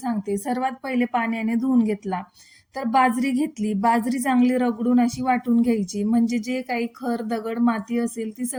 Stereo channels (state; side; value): identical; both; correlation 1.00